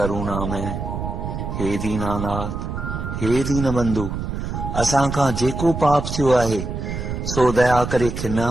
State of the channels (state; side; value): noise; right; rumble, 5 dB below the sound